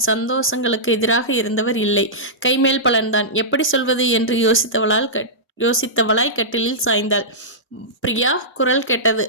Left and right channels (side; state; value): both; normal; correlation -0.14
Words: சந்தோஷங்களுக்கு எதிராக இருந்தவர் இல்லை. கைமேல் பலன்தான். எப்படி சொல்வது என்று யோசித்தவளாய் கட்டிலில் சாய்ந்தாள். பிரியா குரல் கேட்டது.